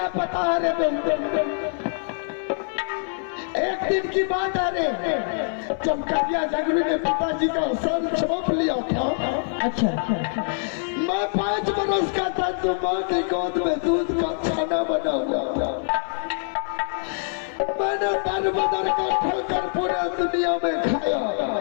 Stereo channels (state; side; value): silent; right; 58 dB below the other